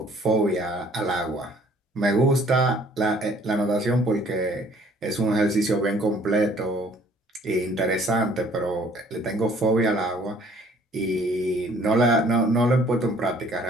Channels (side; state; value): both; normal; correlation 0.58